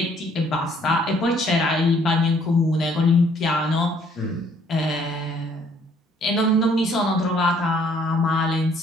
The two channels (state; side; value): normal; both; correlation 0.63